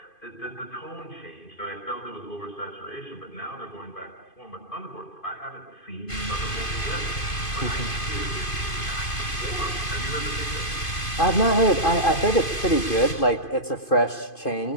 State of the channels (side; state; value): right; late; 2.5 ms